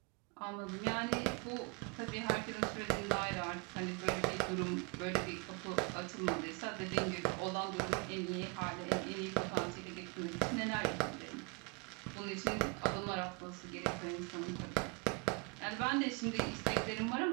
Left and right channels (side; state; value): left; quieter; 30.7 dB